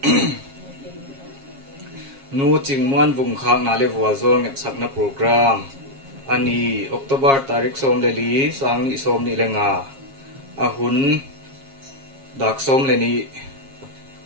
nu ching muan vung khang na le wa zol ngep sak na program ani October tarik som le li sang ni som ni lenga a hun dak som le ni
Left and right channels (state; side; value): late; left; 7.4 ms